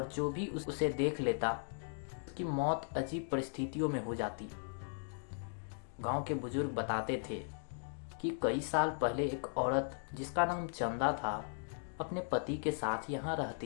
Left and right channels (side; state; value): right; silent; digital silence